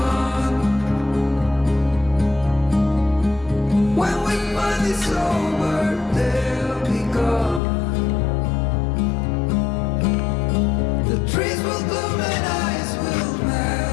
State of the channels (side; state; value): right; drops out; at 7.6 s